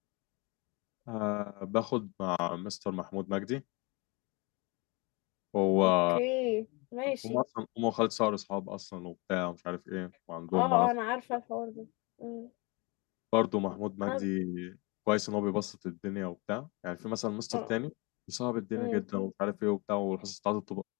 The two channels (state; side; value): quieter; right; 27.9 dB